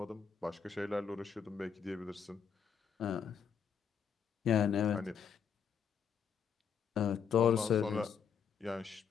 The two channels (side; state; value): right; quieter; 7.2 dB